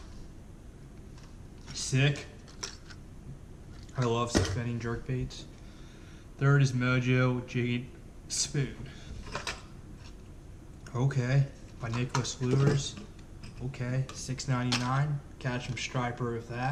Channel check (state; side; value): identical; both; correlation 1.00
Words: Sick. I love suspending jerkbaits. Third is Mojo Jade Spoon. Okay, by Nicholas Lures. Okay, $6.99. Catch 'em striper with